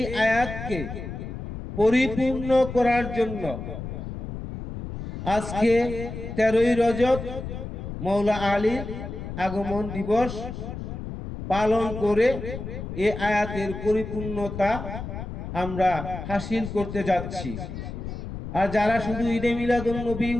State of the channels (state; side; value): noise; left; rumble, 8 dB below the sound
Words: আয়াতকে পরিপূর্ণ করার জন্য আজকে 13ই রজব মাওলা আলীর আগমন দিবস পালন করে এই আয়াতের পরিপূর্ণতা আমরা হাসিল করতে যাচ্ছি। আর যারা শুধু ঈদে মিলাদুন নবী